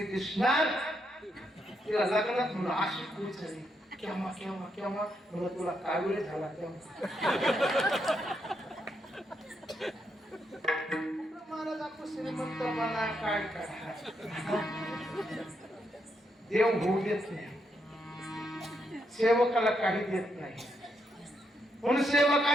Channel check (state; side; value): normal; both; correlation 0.79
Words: दिसणार तिला लग्नात म्हणून अशी खुश झाली केव्हा केव्हा केव्हा म्हणलं तुला कावीळ झाला तेव्हा महाराज आपण श्रीमंतपणा काय करा देव होऊ देत नाही सेवकाला काही देत नाही म्हणून